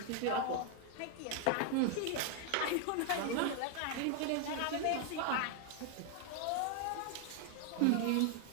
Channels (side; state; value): both; different; correlation 0.00